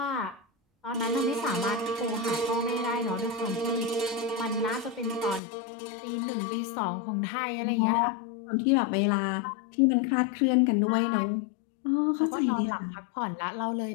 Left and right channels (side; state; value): right; drops out; at 5.4 s